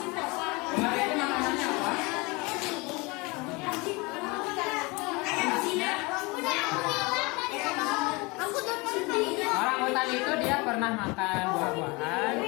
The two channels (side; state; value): right; quieter; 26.1 dB